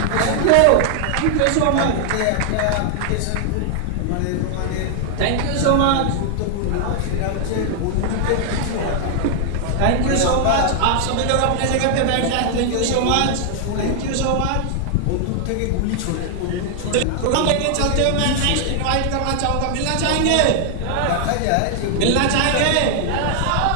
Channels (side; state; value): both; different; correlation 0.00